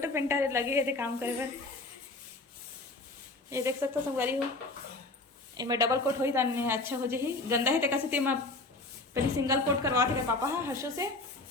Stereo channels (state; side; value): quieter; right; 3.2 dB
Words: पेंटर लगे है काम करे बर। ये देख सकते हो संगवारी हो इनमें डबल कोट होई ताने अच्छा हो जाही। गंदा है तेका से ते पहले सिंगल कोट करवा थे पापा हा हर्षो से